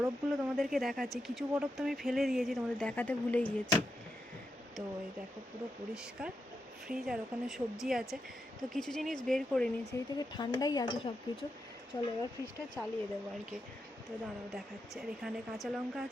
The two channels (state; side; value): normal; both; correlation 0.85